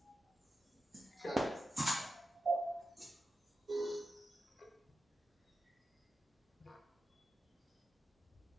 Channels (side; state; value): both; normal; correlation 0.91